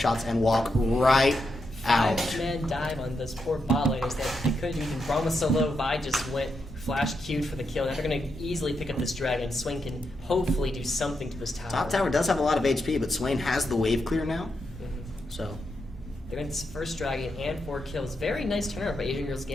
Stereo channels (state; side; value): normal; both; correlation 0.84